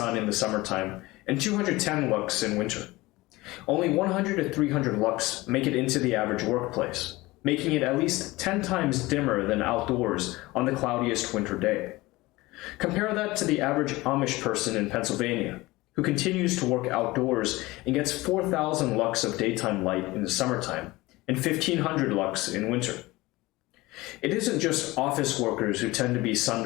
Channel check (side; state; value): right; quieter; 20.4 dB